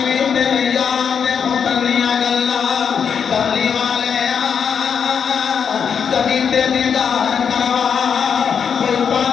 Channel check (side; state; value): right; quieter; 7.0 dB